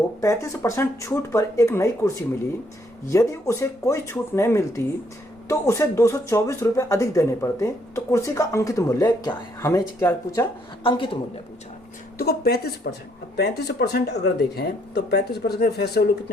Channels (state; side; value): normal; both; correlation 0.70